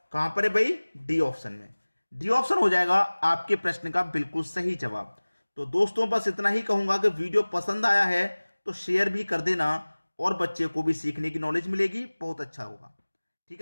कहां पर है भाई? डी ऑप्शन में। डी ऑप्शन हो जाएगा आपके प्रश्न का बिल्कुल सही जवाब। तो दोस्तों बस इतना ही कहूंगा कि वीडियो पसंद आया है तो शेयर भी कर देना, और बच्चे को भी सीखने की नॉलेज मिलेगी, बहुत अच्छा होगा। ठीक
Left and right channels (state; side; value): inverted; both; correlation -1.00